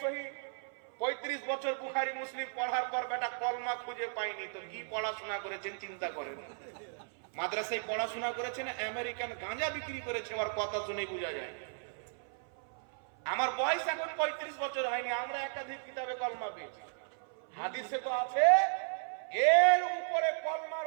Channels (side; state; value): left; silent; 54 dB below the other